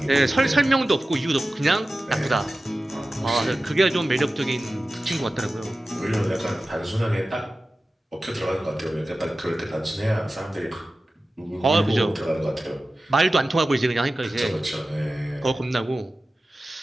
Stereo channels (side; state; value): both; normal; correlation 0.95